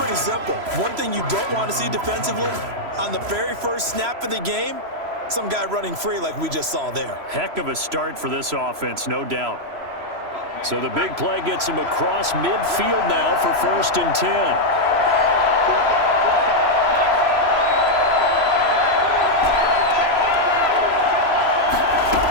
simple. One thing you don't want to see defensively, on the very first snap of the game, some guy running free like we just saw there. Heck of a start for this offense, no doubt. So the big play gets him across midfield now for 1st and 10.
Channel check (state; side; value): late; left; 3.0 ms